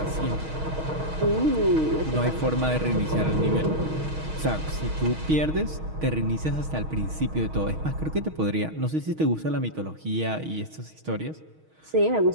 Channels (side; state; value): left; late; 6.4 ms